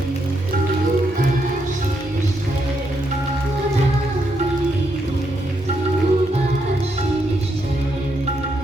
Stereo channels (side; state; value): both; normal; correlation 0.79